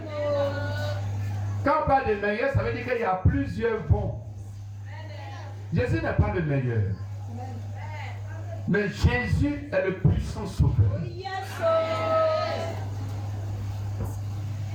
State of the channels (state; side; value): identical; both; correlation 1.00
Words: Quand on parle de meilleur, ça veut dire qu'il y a plusieurs bons. Jésus n'est pas le meilleur. Mais Jésus est le puissant sauveur.